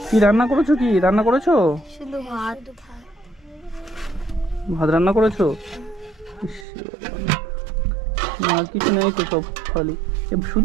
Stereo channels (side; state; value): left; drops out; at 6.7 s